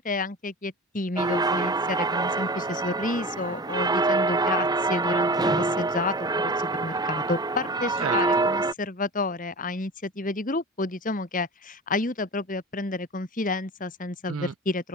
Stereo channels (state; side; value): normal; both; correlation 0.32